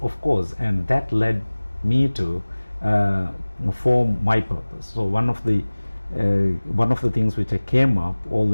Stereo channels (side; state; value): both; inverted; correlation -1.00